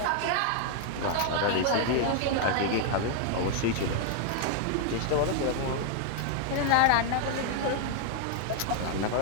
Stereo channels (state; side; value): different; both; correlation 0.00